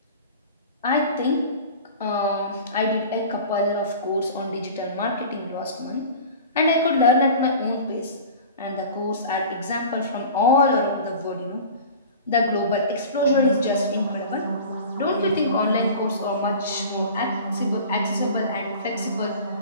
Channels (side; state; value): both; inverted; correlation -0.39